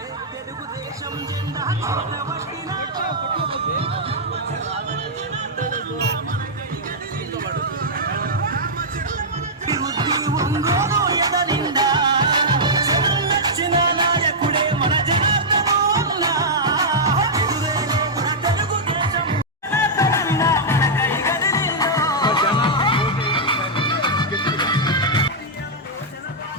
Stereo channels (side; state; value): both; normal; correlation -0.08